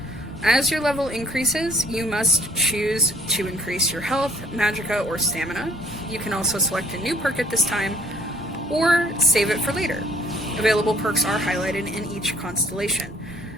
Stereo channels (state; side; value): normal; both; correlation 0.61